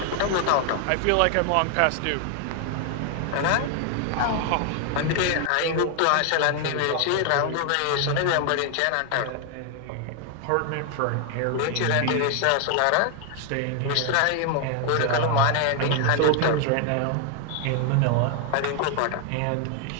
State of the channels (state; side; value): different; both; correlation 0.00